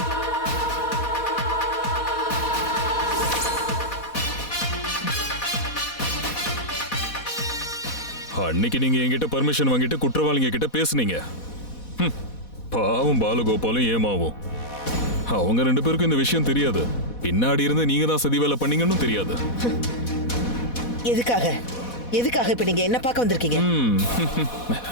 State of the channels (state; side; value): late; right; 4.1 ms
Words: அன்னைக்கு நீங்க என்கிட்ட பர்மிஷன் வாங்கிட்டு குற்றவாளிங்க கிட்ட பேசுனீங்க. பாவம் பாலகோபாலும் ஏமாவும். அவங்க 2 பேருக்கும் இந்த விஷயம் தெரியாது. பின்னாடி இருந்து நீங்க தான் சதி வேலை பண்ணீங்கன்னு தெரியாது. எதுக்காக இப்ப நீங்க என்ன பார்க்க வந்திருக்கீங்க?